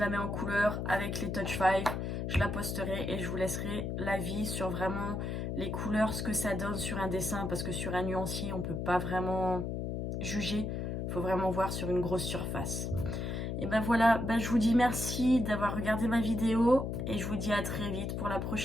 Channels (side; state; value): left; noise; hum, 2 dB below the sound